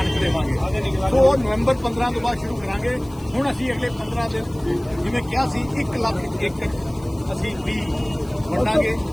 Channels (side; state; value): left; noise; hiss, 25 dB below the sound